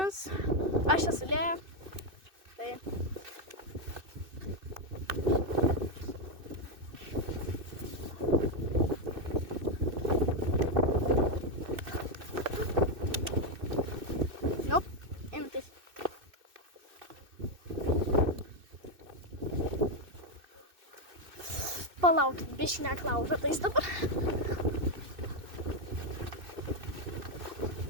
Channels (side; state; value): left; late; 2.6 ms